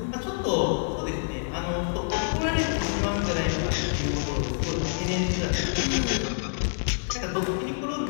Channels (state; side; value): silent; right; 60 dB below the other